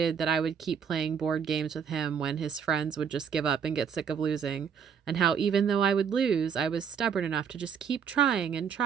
that I would keep playing board games with him when his friends would just give up and get sick of losing, and how even though I would lose, I was stubborn enough to just keep trying and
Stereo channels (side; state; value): left; quieter; 7.3 dB